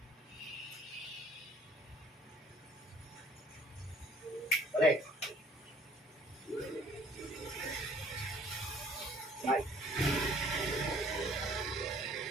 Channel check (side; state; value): both; normal; correlation 0.58